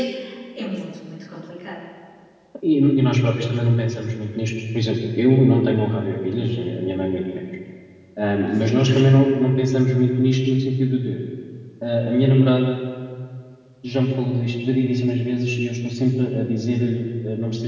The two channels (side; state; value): both; identical; correlation 1.00